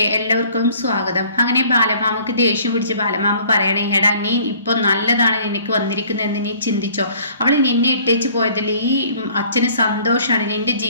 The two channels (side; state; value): both; inverted; correlation -0.55